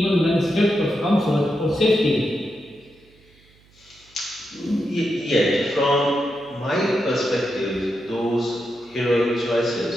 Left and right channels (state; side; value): noise; right; hum, 30 dB below the sound